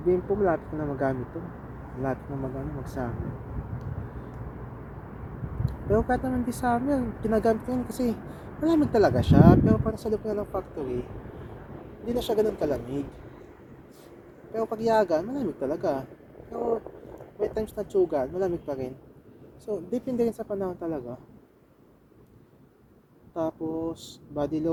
Bimpo, malapit ko na magamit to. Malapit na mag-summer. Pero kahit naman di summer, ginagamit ko yun kasi malamig talaga siya. Pero parang sa loob na ng factory, hindi na siya ganun kalamig. Pero pag yagan, malamig talaga. Pero may times na tsugan, malamig pa rin. So, depende rin sa panahon talaga. Tapos, body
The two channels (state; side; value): identical; both; correlation 1.00